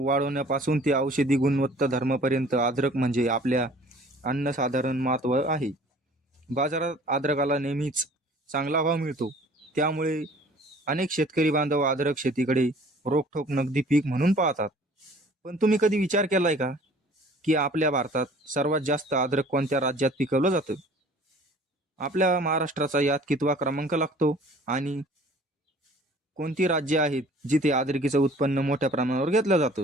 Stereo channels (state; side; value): normal; both; correlation 0.50